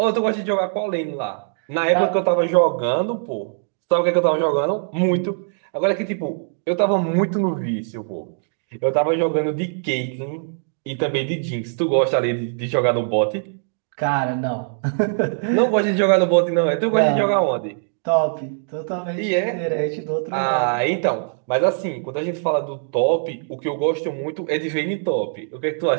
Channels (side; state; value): left; silent; digital silence